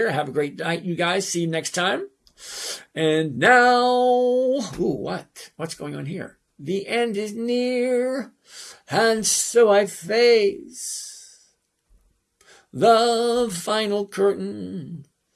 Have a great night, you guys. See you next time. And now, what's going on here? The end is near, and so I face the final curtain,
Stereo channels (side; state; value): both; identical; correlation 1.00